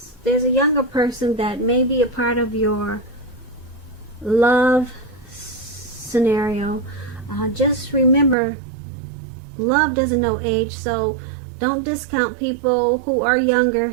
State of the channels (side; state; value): left; drops out; at 8.3 s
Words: there's a younger person that may be a part of your love scenario. Just remember, love doesn't know age, so don't discount people who are